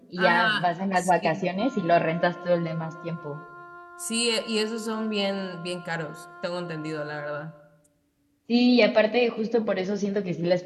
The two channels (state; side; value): identical; both; correlation 1.00